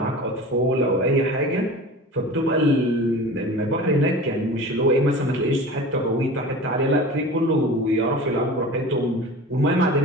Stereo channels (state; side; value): normal; both; correlation 0.36